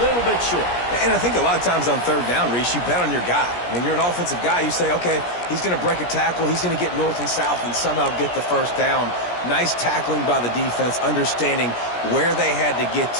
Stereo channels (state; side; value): late; right; 17 ms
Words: little bit short. And I think a lot of times on 3rd down, Reese, you bet on your guy. When you're an offensive guy, you say, okay, he's going to break a tackle. He's going to get north and south and somehow get the 1st down. Nice tackling by the defense, understanding where they had to get